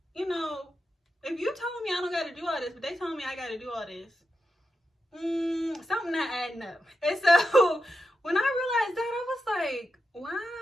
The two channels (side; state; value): both; normal; correlation 0.88